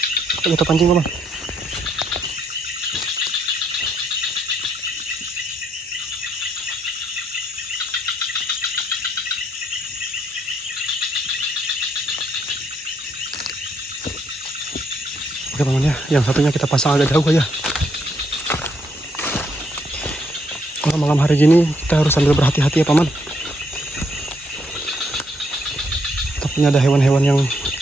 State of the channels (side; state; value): both; normal; correlation 0.73